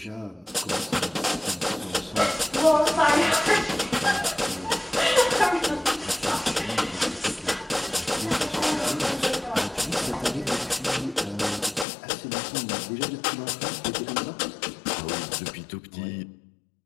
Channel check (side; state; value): right; drops out; at 11.9 s